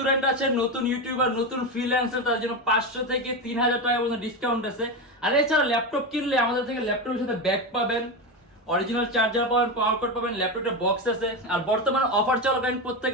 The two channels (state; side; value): normal; both; correlation 0.16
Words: আছে, নতুন ইউটিউবার, নতুন ফ্রিল্যান্সার, তার জন্য 500 থেকে 3000 টাকা পর্যন্ত ডিসকাউন্ট আছে। আর এছাড়া ল্যাপটপ কিনলে আমাদের থেকে ল্যাপটপের সাথে ব্যাগ পাবেন, অরিজিনাল চার্জার পাবেন, পাওয়ার কোড পাবেন, ল্যাপটপের বক্স আছে। আর বর্তমানে অফার চলাকালীন প্রত্যেক